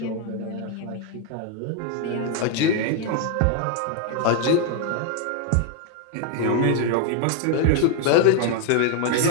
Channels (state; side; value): different; both; correlation 0.00